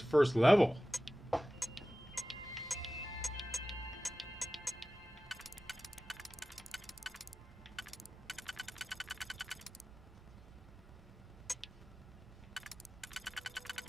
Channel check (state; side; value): normal; both; correlation 0.96